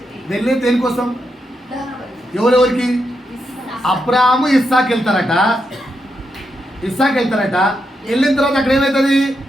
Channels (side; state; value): both; normal; correlation 0.83